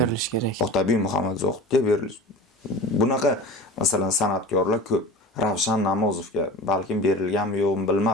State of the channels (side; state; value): both; normal; correlation 0.34